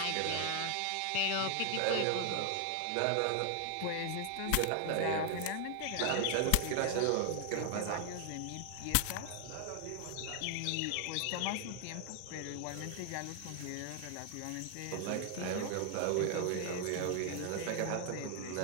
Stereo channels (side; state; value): both; different; correlation 0.00